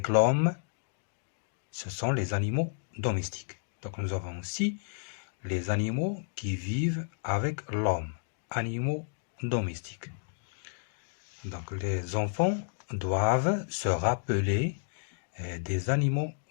l'homme, ce sont les animaux domestiques. Donc nous avons aussi les animaux qui vivent avec l'homme, animaux domestiques. Donc les enfants doivent se rappeler des animaux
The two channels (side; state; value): right; silent; digital silence